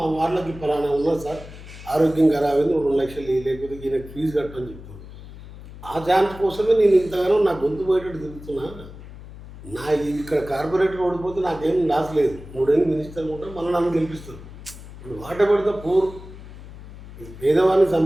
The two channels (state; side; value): noise; left; hum, 15 dB below the sound